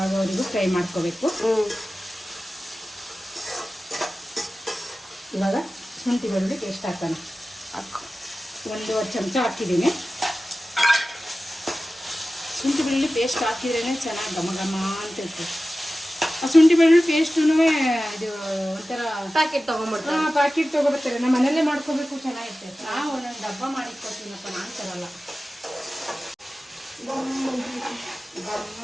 ಫ್ರೈ ಮಾಡ್ಕೋಬೇಕು. ಇವಾಗ ಶುಂಠಿ ಬೆಳ್ಳುಳ್ಳಿ ಪೇಸ್ಟ್ ಹಾಕೋಣ. 1 ಚಮಚ ಹಾಕಿದ್ದೀನಿ. ಶುಂಠಿ ಬೆಳ್ಳುಳ್ಳಿ ಪೇಸ್ಟ್ ಹಾಕಿದ್ರೇ ಚೆನ್ನಾಗಿ ಘಮ ಘಮ ಅಂತ ಇರ್ತದೆ. ಆ ಶುಂಠಿ ಬೆಳ್ಳುಳ್ಳಿ ಪೇಸ್ಟೂ ಇದು ಒಂಥರ ಪ್ಯಾಕೆಟ್ ತೊಗೊಂಡ್ಬಿಡ್ತಾರೆ. ಪ್ಯಾಕೆಟ್ ತೊಗೊಬರ್ತಾರೆ. ನಮ್ಮ ಮನೆಯಲ್ಲೇ ಮಾಡ್ಕೋಬೇಕು, ಚೆನ್ನಾಗಿರ್ತದೆ. ನಾವು ಒಂದೊಂದು ಡಬ್ಬ ಮಾಡಿಕೊಡ್ತೀನಪ್ಪ, ನಾನು ತರಲ್ಲ. ಗಮ್ಮ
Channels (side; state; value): both; normal; correlation 0.95